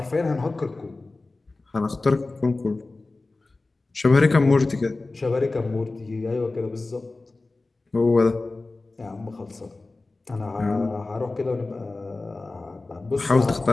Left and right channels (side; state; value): right; quieter; 3.3 dB